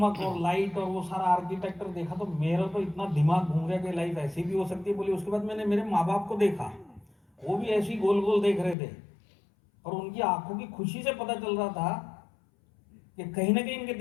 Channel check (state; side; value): drops out; right; at 8.8 s